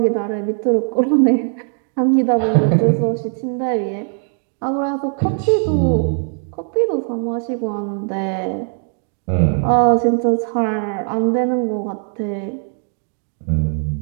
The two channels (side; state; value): left; silent; 56 dB below the other